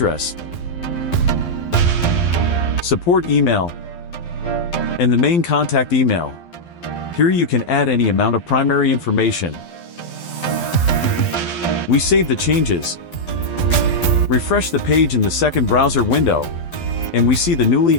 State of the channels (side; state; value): right; late; 12 ms